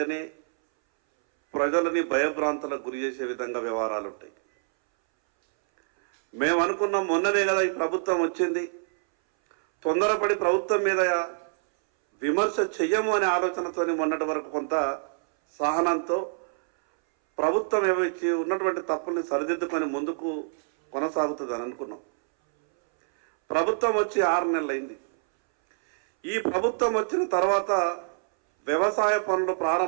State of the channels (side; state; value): left; silent; 61 dB below the other